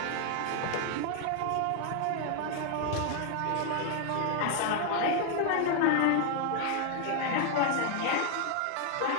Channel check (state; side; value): different; both; correlation 0.00